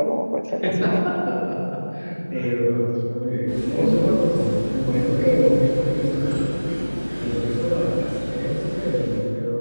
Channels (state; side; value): inverted; both; correlation -1.00